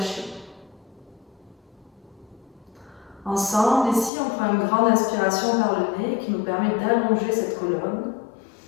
Ensemble, ici, on prend une grande inspiration par le nez qui nous permet d'allonger cette colonne.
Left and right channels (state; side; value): drops out; right; at 4.1 s